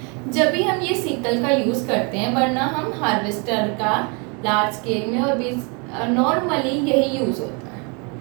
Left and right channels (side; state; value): left; quieter; 33.1 dB